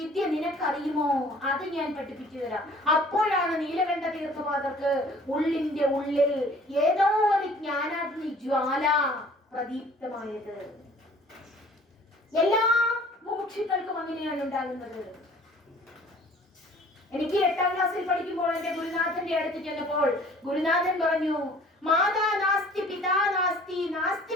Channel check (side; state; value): both; normal; correlation 0.52